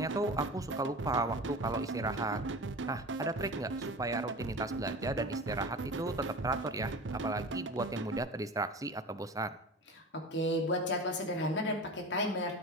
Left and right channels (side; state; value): both; normal; correlation 0.33